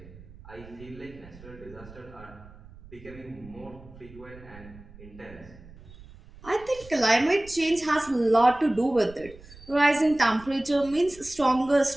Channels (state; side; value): noise; right; rumble, 20 dB below the sound